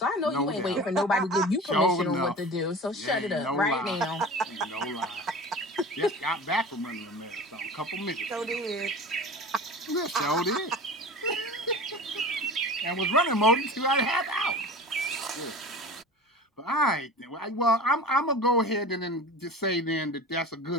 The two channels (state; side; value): normal; both; correlation 0.35